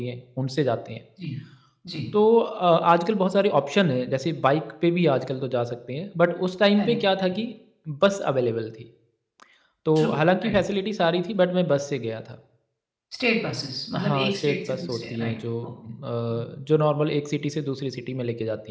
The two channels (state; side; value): identical; both; correlation 1.00